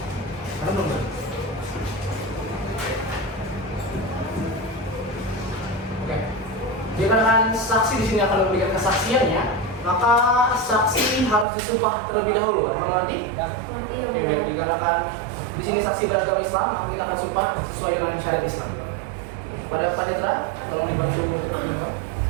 Karena belum ada. Oke. Dikarenakan saksi di sini akan memberikan kesaksiannya, maka saksi harus disumpah terlebih dahulu. Apakah nanti? Nanti Yang Oke, Mulia. baik. Dikarenakan di sini saksi beragama Islam, maka kita akan sumpah sesuai dengan syariat Islam. Pada panitera, tolong dibantu untuk menyumpah.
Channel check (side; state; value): left; drops out; at 11.5 s